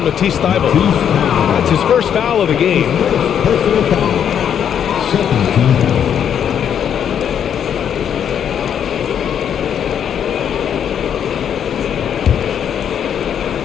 Matisse Thybulle. That's his first foul of the game. Personal foul. Second team foul.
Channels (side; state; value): right; quieter; 8.7 dB